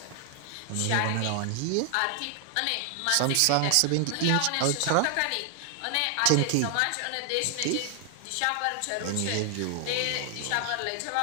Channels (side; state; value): both; different; correlation 0.00